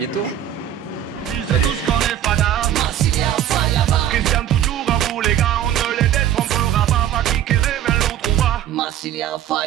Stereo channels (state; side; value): quieter; left; 11.0 dB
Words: Christian toujours à vous les gars, on ne les détrompera pas, va qui révèle l'autre va. Massilia